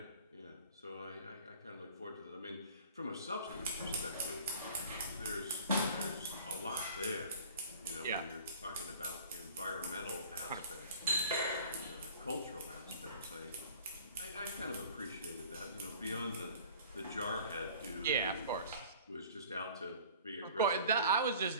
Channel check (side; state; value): both; inverted; correlation -0.46